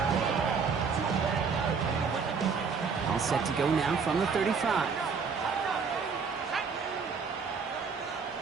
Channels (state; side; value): quieter; left; 5.5 dB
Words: All set to go now from the 35.